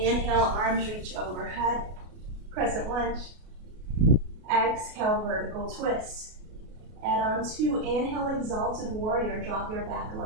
arms reach overhead, crescent lunge. Exhale, vertical twist. Add on two, inhale, exalted warrior. Drop your back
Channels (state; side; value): late; left; 33 ms